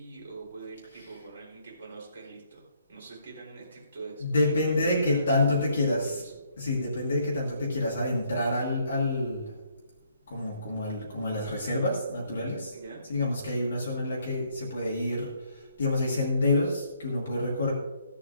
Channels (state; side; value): inverted; both; correlation -0.68